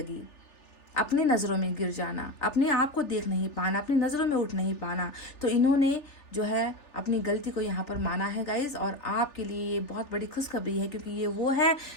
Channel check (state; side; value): late; right; 3.4 ms